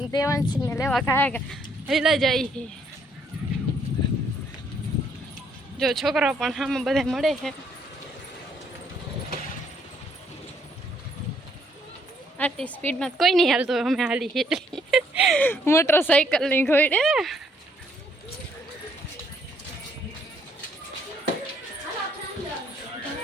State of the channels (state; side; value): normal; both; correlation 0.68